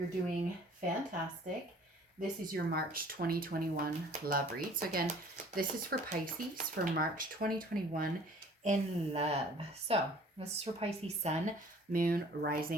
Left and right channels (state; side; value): normal; both; correlation 0.52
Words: doing fantastic. This is your March 2021 love read. So again, this is for Pisces for March 2021 in love. So this is for Pisces Sun, Moon,